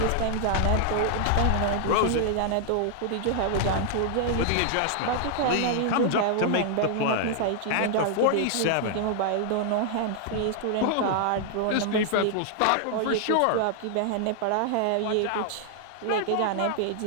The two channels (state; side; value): different; both; correlation 0.00